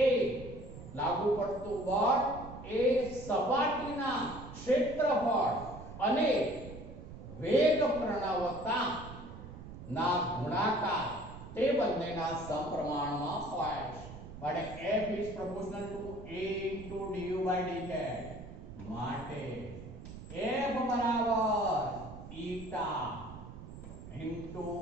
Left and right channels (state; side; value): noise; right; rumble, 13 dB below the sound